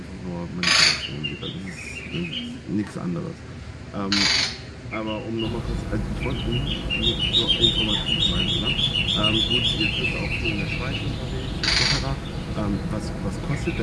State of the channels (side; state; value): both; identical; correlation 1.00